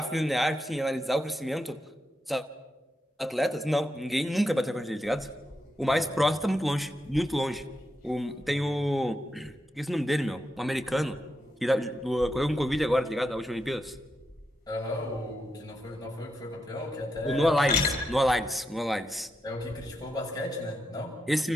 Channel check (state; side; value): normal; both; correlation 0.85